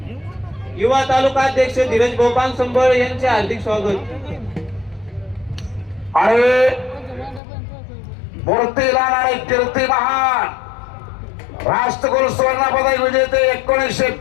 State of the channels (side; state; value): right; drops out; at 7.4 s